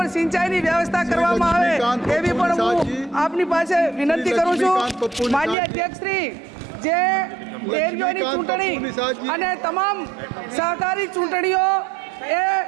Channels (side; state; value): left; drops out; at 5.6 s